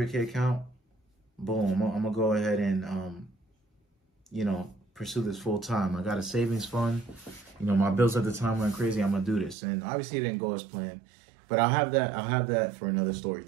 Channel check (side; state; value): left; drops out; at 9.6 s